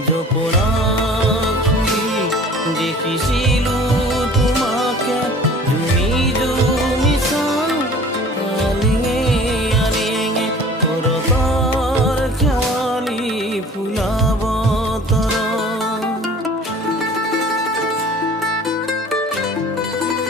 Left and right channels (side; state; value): both; normal; correlation 0.47